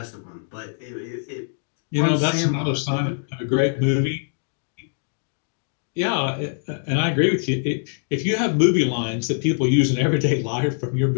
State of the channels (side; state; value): right; silent; digital silence